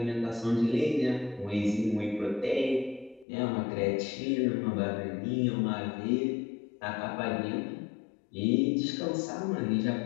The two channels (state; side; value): drops out; right; at 3.2 s